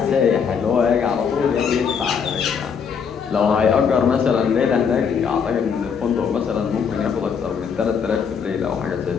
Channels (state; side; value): quieter; right; 6.6 dB